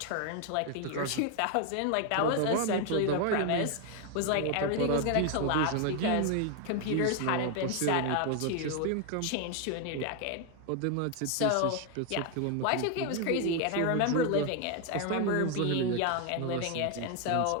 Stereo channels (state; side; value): different; both; correlation 0.01